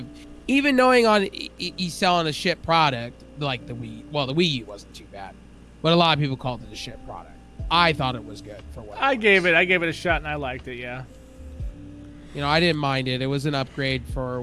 he's selling a shit product like the Wii. Well, the Wii U wasn't too bad, but a lot of people called it a shit product. I thought it was good for what I gave it a shot and I liked it. Yeah. I didn't mind it. It was an upgrade for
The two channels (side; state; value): both; identical; correlation 1.00